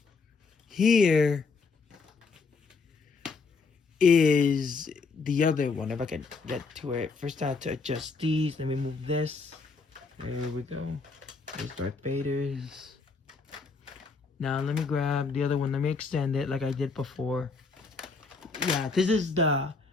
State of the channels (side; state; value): right; quieter; 4.5 dB